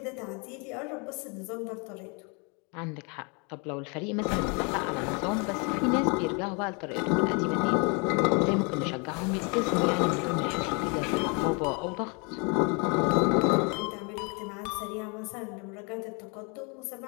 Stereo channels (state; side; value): quieter; right; 33.2 dB